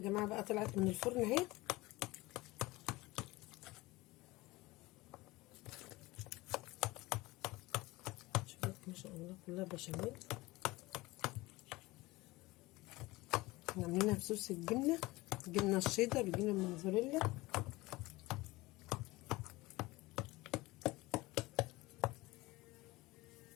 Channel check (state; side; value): quieter; right; 20.6 dB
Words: بقى طلعت من الفرن اهي. شوفوا ما شاء الله كلها بشاميل. عاملينها بصوص الجبنه، الجبنه الشيدر، الجبنه الموزاريلا.